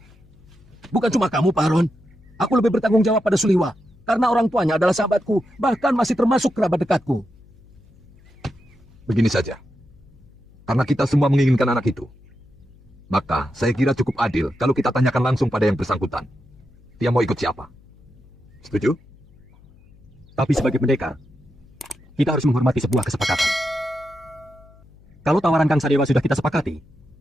Bukan cuma kamu, Pak Aron. Aku lebih bertanggung jawab pada Suliwa. Karena orang tuanya adalah sahabatku, bahkan masih termasuk kerabat dekatku. Begini saja. Karena kita semua menginginkan anak itu, maka saya kira cukup adil kalau kita tanyakan langsung pada yang bersangkutan. Dia mau ikut siapa? Setuju? Tapi sebagai pendekar, kita harus menghormati sebuah kesepakatan. Kalau tawaran Kang Sadewa sudah kita sepakati,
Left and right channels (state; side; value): noise; left; hum, 26 dB below the sound